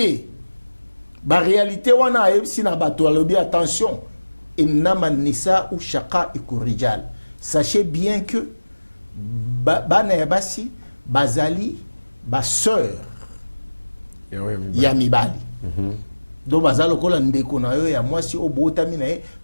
la réalité wana si na bato alobi attention, innama nisa ou shaka ikurijal. Sachez bien que bana yabasi bazali ba sœur ya mibali. Donc bazalo kola ndeko na yo ya mwasi obotami na ye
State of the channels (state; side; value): inverted; both; correlation -1.00